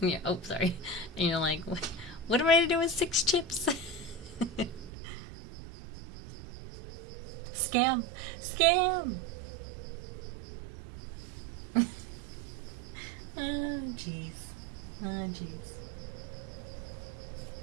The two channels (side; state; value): left; drops out; at 4.9 s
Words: Oh, sorry. And you're like, what am I to do with 6 chips? Scam. Scam. Oh, jeez. Oh, jeez.